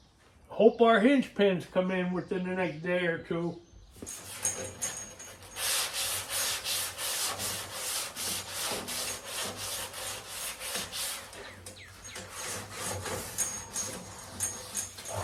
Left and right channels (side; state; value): both; identical; correlation 1.00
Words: Hope our hinge pins come in within the next day or two.